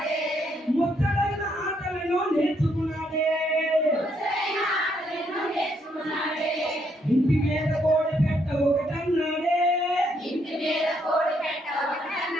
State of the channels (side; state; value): both; normal; correlation 0.73